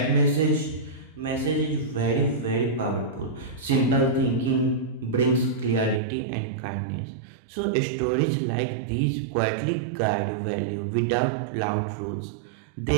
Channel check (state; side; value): drops out; left; at 6.0 s